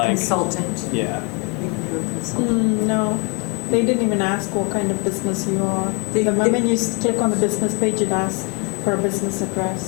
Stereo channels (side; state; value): right; quieter; 30.9 dB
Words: Consultant. yeah, You can do a consultant. No, they didn't even ask what kind of business you are. They- The they- moment you click on the business page, it asks for a business